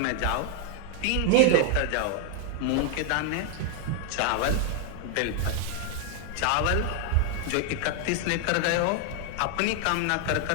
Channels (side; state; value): both; different; correlation 0.00